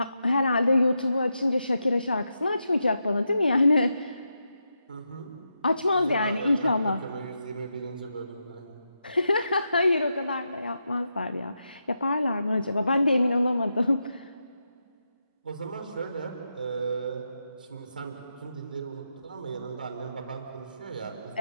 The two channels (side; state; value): both; inverted; correlation -0.86